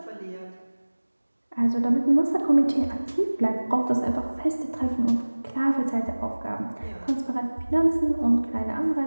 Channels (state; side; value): inverted; both; correlation -1.00